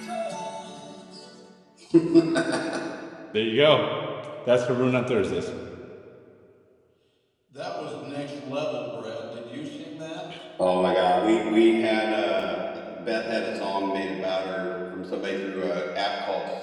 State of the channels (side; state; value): both; identical; correlation 1.00